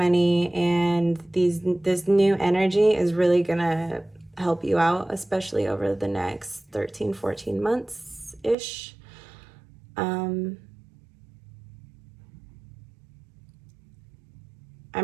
and this new energy is really gonna help you out, especially over the next 13, 14 months-ish. I'm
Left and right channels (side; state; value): left; drops out; at 8.6 s